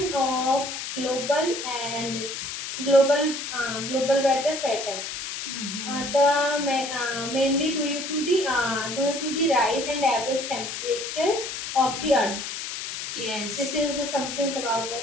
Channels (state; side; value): noise; left; hiss, 6 dB below the sound